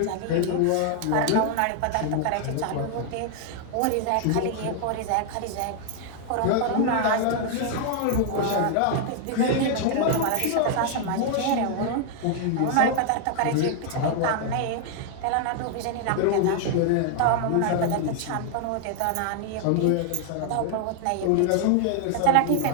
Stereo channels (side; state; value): both; different; correlation 0.00